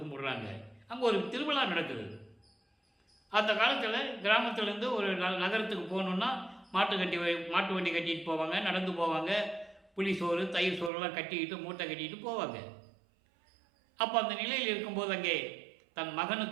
கும்பிடுறாங்க. அங்கே ஒரு திருவிழா நடக்குது. அந்த காலத்தில் கிராமத்திலேருந்து ஒரு நகரத்துக்கு போகணுன்னா மாட்டு வண்டி கட்டிட்டு போவாங்க, நடந்து போவாங்க. புளி சோறு தயிர் சோறுலாம் கட்டிக்கிட்டு மூட்டை கட்டிக்கிட்டு போவாங்க. அப்போ அந்த நிலையில் இருக்கும்போது அங்கே தன்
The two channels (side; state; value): left; drops out; at 10.9 s